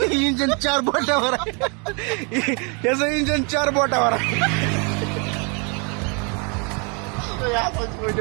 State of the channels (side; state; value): left; quieter; 34.9 dB